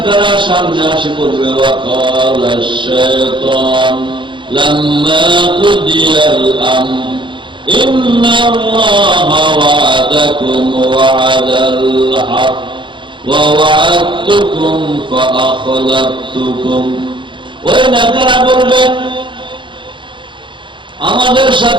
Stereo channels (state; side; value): late; left; 0.23 ms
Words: সামনে আসে বলবে, ওয়াকাল আশ-শায়তান লাম্মা কুদিয়াল আমর ইন্নাল্লাহা ওয়া'আদাকুম ওয়া'দাল হক ওয়া ওয়া'আদতুকুম ফাআখলাফতুকুম। ওই নেতারা বলবে আমাদের